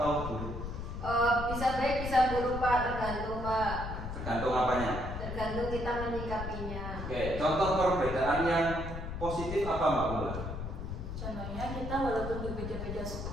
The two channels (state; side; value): noise; left; rumble, 6 dB below the sound